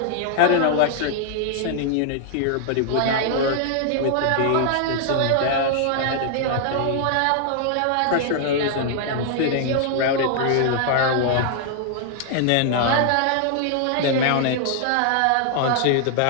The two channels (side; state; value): both; different; correlation 0.00